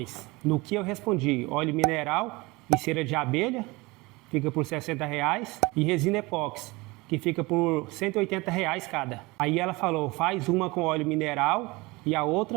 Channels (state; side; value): quieter; left; 23.3 dB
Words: No que eu respondi, óleo mineral e cera de abelha, fica por R$60, e resina epóxi, que fica por R$180 cada. Aí ela falou, faz uma com óleo mineral e a